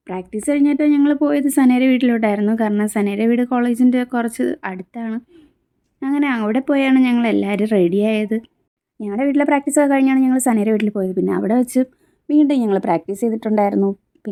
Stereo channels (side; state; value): both; identical; correlation 1.00